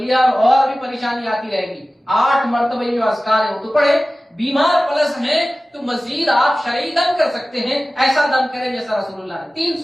اور بھی پریشانی آتی رہے گی۔ 8 مرتبہ جو اذکار ہے وہ تو پڑھے۔ بیمار پلس ہیں تو مزید آپ شرعی دم کر سکتے ہیں، ایسا دم کریں جیسا رسول اللہ نے۔ 3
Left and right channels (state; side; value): normal; both; correlation 0.97